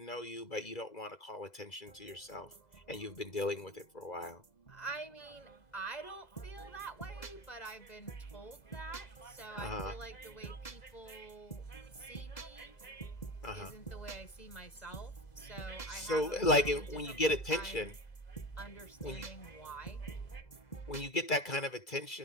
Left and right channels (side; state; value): right; late; 2.0 ms